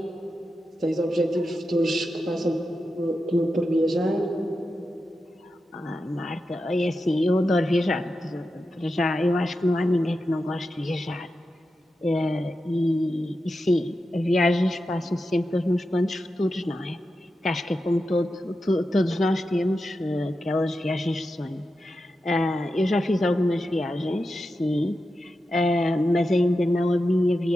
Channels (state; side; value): normal; both; correlation 0.90